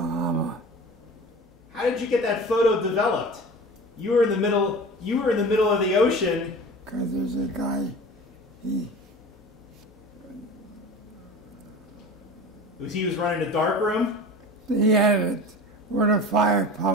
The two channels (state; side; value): normal; both; correlation 0.36